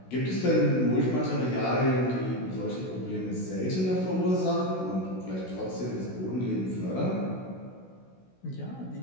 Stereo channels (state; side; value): late; right; 16 ms